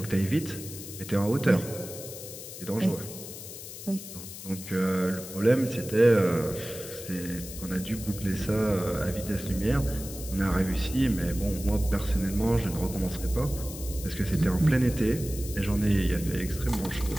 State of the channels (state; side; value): noise; left; hiss, 12 dB below the sound